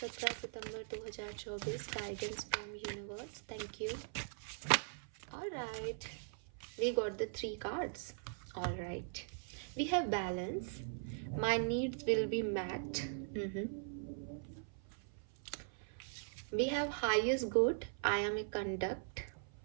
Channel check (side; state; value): left; silent; 51 dB below the other